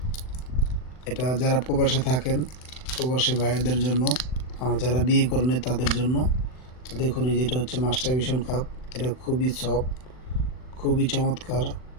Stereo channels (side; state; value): right; late; 39 ms